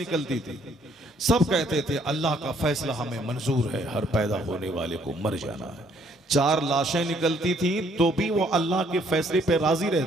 थी, सब कहते थे अल्लाह का फैसला हमें मंजूर है, हर पैदा होने वाले को मर जाना है। 4 लाशें निकलती थी तो भी वो अल्लाह के फैसले पे राजी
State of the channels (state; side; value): normal; both; correlation 0.65